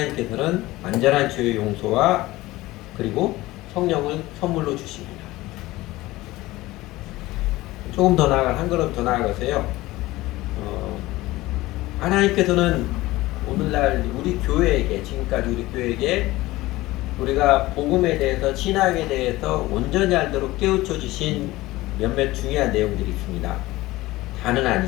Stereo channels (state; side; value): quieter; right; 18.5 dB